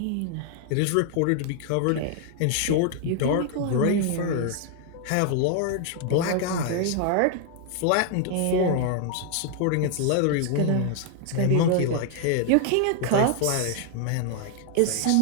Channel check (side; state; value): both; different; correlation 0.00